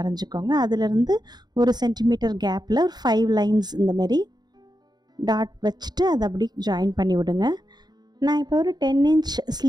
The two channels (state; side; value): late; left; 0.20 ms